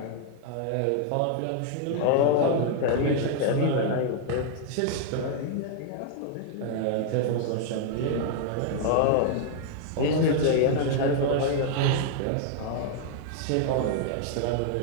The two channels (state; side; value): different; both; correlation -0.01